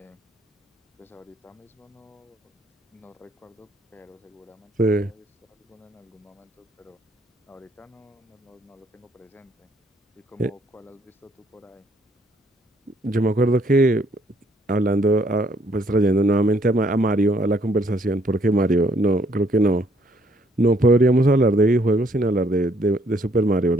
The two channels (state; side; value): normal; both; correlation 0.67